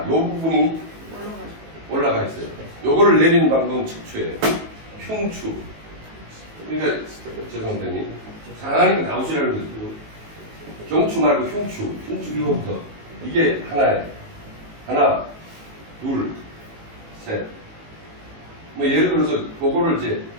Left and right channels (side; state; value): left; late; 19 ms